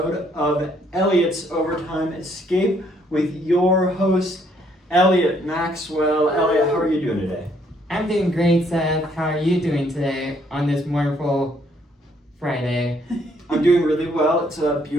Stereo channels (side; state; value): both; normal; correlation 0.68